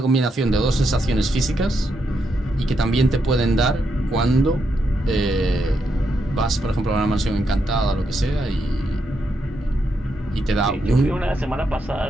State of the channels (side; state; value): both; normal; correlation 0.81